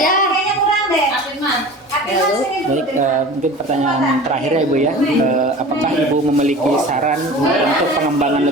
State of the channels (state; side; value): normal; both; correlation 0.38